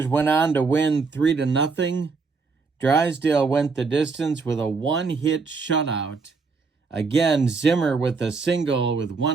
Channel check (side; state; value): left; quieter; 4.6 dB